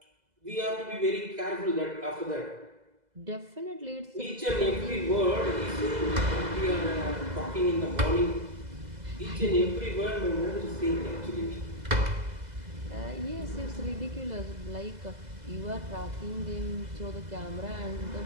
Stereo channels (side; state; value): left; late; 2.0 ms